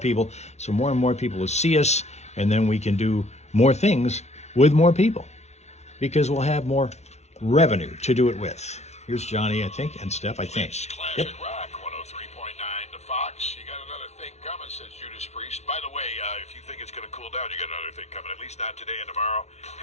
so more and more people will see us, and then we can do more things with more people, because we'll have more revenue to do it with. Here's Johnny, I think, and Steph, I think. Classic Yep. Rock 103.9 to Fox. You got another thing coming. says Judas Priest. By the way, if you think it's going to cool down, you got another thing coming. At least not today and tomorrow.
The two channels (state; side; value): late; right; 0.32 ms